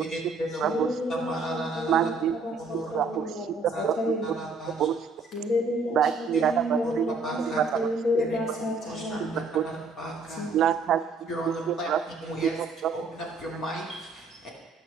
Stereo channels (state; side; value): quieter; left; 4.1 dB